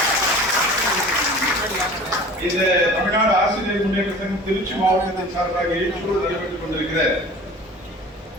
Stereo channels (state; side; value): normal; both; correlation 0.42